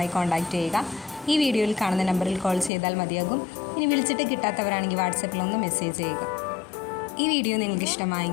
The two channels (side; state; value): right; drops out; at 2.7 s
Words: കോൺടാക്റ്റ് ചെയ്യുക. ഈ വീഡിയോയിൽ കാണുന്ന നമ്പറിൽ കോൾ ചെയ്താൽ മതിയാകും. ഇനി വിളിച്ചിട്ട് കിട്ടാത്തവരാണെങ്കിൽ വാട്സപ്പിൽ ഒന്ന് മെസ്സേജ് ചെയ്യുക. ഈ വീഡിയോ നിങ്ങൾക്ക്